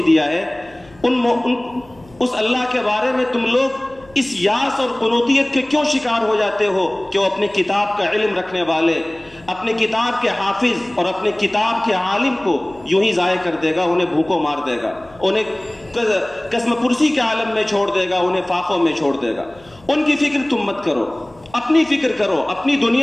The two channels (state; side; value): noise; left; hum, 26 dB below the sound